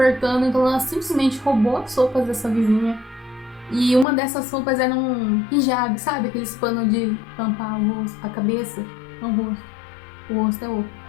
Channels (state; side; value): drops out; right; at 4.0 s